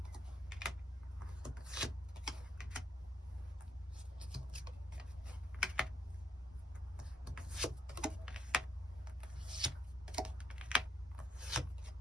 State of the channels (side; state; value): both; normal; correlation 0.75